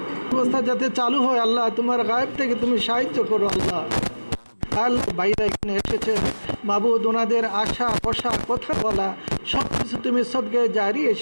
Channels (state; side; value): inverted; both; correlation -1.00